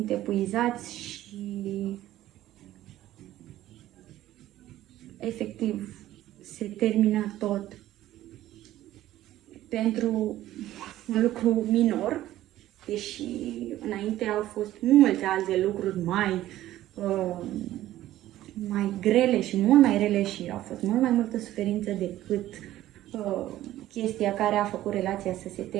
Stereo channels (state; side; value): quieter; left; 14.2 dB